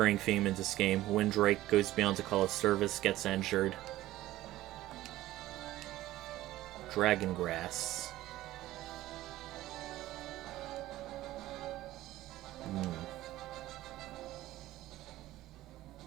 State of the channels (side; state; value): left; quieter; 15.6 dB